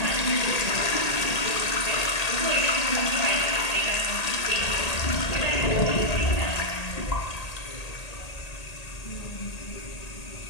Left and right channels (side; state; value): right; late; 1.8 ms